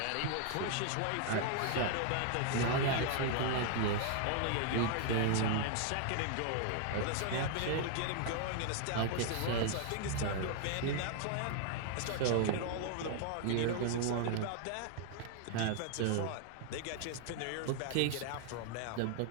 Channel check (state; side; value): different; both; correlation 0.00